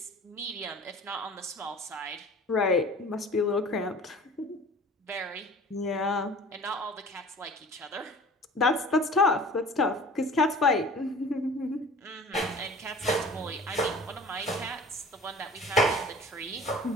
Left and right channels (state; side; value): normal; both; correlation 0.44